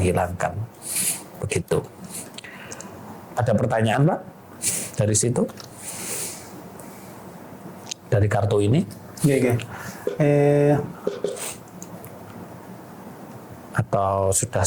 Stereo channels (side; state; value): both; identical; correlation 1.00